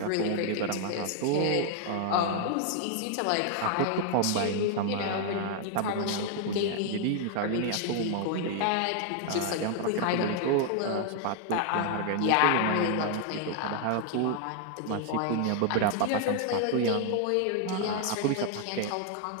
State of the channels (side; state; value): both; different; correlation 0.00